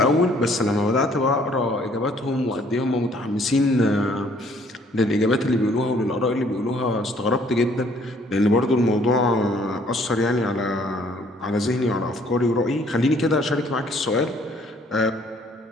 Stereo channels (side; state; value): both; normal; correlation 0.61